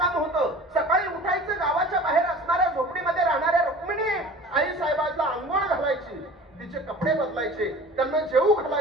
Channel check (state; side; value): normal; both; correlation 0.41